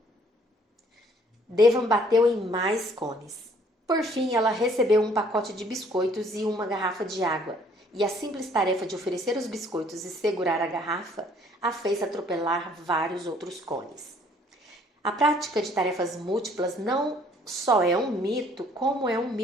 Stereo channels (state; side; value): normal; both; correlation 0.60